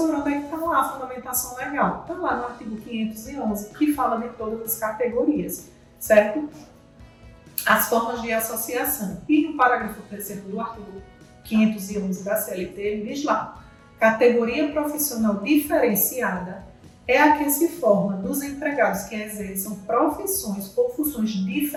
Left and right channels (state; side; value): identical; both; correlation 1.00